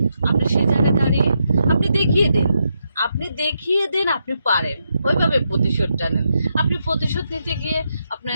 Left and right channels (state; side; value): inverted; both; correlation -0.82